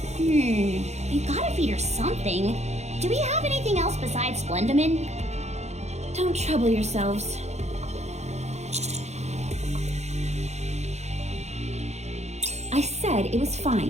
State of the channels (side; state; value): left; late; 0.32 ms